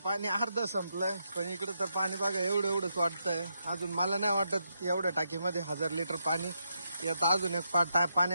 पाणी अर्ध संपलंय. पण इकडं तर पाणी बघा एवढंच वाटतंय. अजून मला नाही वाटत एवढ्या टाकीमध्ये 1000 लिटर पाणी. आता अजून एक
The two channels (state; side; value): inverted; both; correlation -0.82